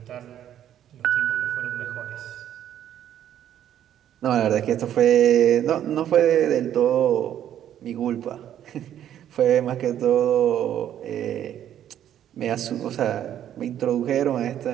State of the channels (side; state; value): left; quieter; 10.8 dB